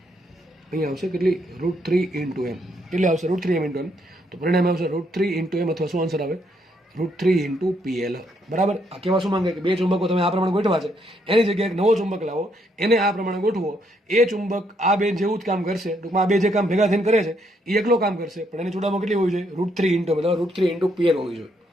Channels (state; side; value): normal; both; correlation 0.73